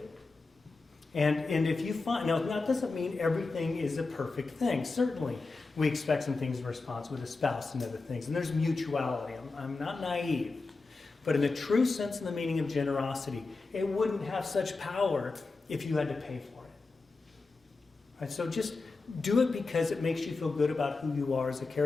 And if you find, now that doesn't mean everything is a perfect thing. Certainly, we expect some things in response with a spouse and other things. And there's mutuality. I'm not naive. But in the true sense and the meaning of generosity, it wouldn't have such power if you had to pay for it. Right? So just do it because it makes you feel good about who you are as a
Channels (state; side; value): quieter; right; 3.8 dB